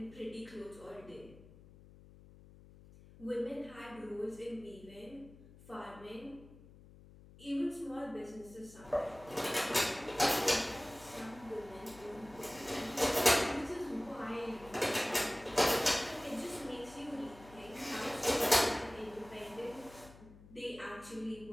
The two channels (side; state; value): left; noise; hum, 20 dB below the sound